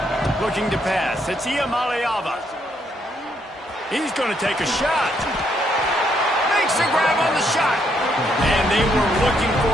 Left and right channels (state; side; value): normal; both; correlation 0.74